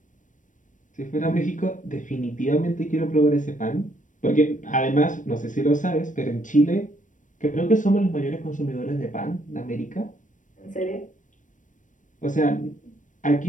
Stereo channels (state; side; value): late; right; 0.37 ms